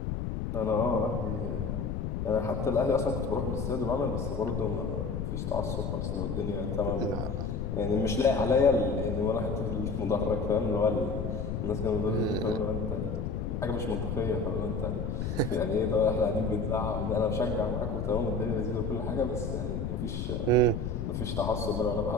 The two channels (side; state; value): left; noise; rumble, 2 dB below the sound